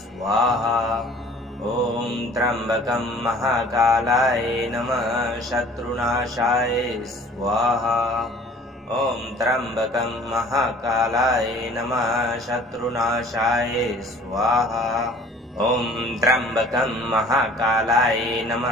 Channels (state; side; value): normal; both; correlation 0.50